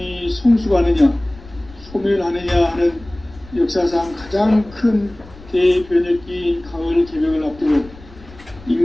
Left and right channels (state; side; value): noise; left; rumble, 21 dB below the sound